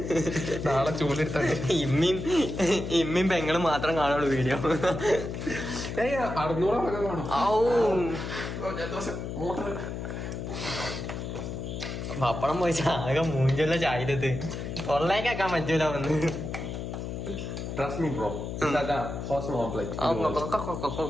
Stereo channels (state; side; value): noise; left; hum, 6 dB below the sound